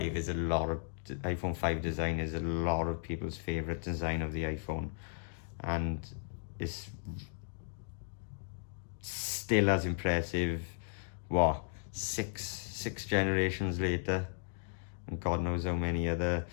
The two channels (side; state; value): right; silent; digital silence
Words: is iPhone 5 design is a lot of people's favorite design of the iPhone, and it's still as impressive. What, six generations later, and God knows how many other